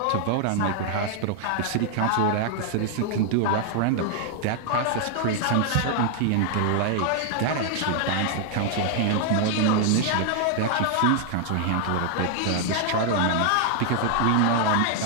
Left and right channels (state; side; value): different; both; correlation 0.00